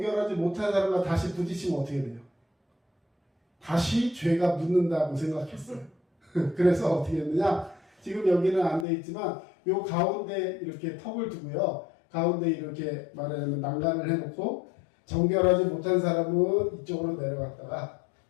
못한 사람과 다시 부딪히면 어떻게 돼요? 다시 죄가 묻는다고 생각했어요. 그래서 어떻게 했느냐? 지금 여기는 안 돼 있지만 요 가운데 이렇게 턱을 두고요. 가운데 이렇게 말하자면 난간을 해놓고 정결하지 못한 사람은 이쪽으로 내려갔다가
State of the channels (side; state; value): right; drops out; at 8.8 s